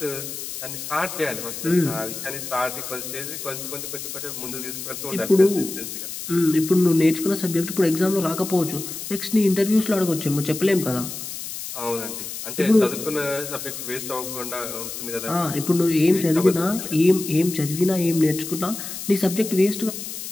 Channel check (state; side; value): noise; left; hiss, 8 dB below the sound